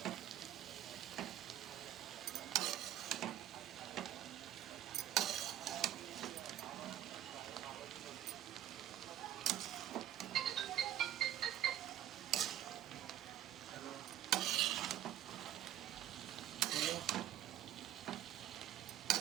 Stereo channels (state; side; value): quieter; left; 11.8 dB